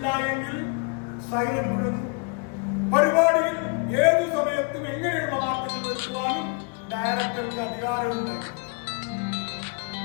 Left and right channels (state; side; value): quieter; right; 33.6 dB